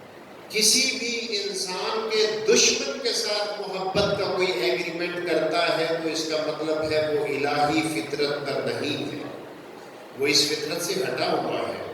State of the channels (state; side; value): identical; both; correlation 1.00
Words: کسی بھی انسان کے دشمن کے ساتھ محبت کا کوئی ایگریمنٹ کرتا ہے تو اس کا مطلب ہے وہ الہی فطرت پر نہیں ہے، وہ اس فطرت سے ہٹا ہوا ہے۔